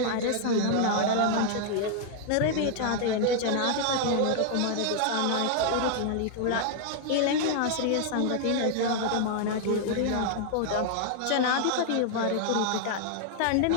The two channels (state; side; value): different; both; correlation 0.00